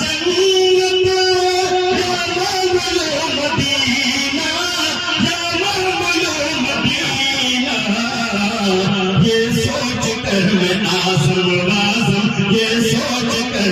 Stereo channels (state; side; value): identical; both; correlation 1.00